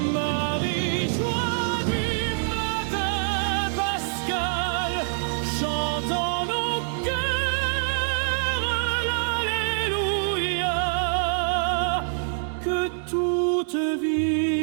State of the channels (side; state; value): left; silent; digital silence